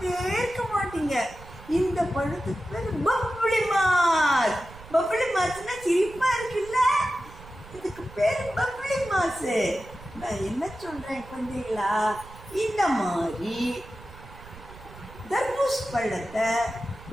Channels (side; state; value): right; noise; rumble, 18 dB below the sound